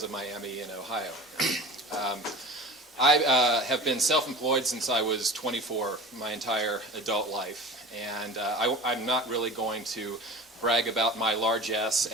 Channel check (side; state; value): both; normal; correlation 0.36